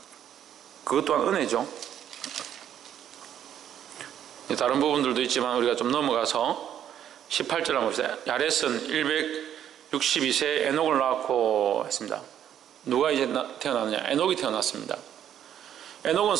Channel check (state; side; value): quieter; left; 10.1 dB